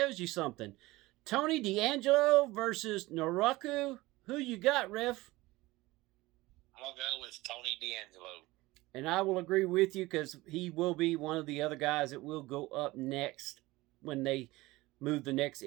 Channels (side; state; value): left; quieter; 19.9 dB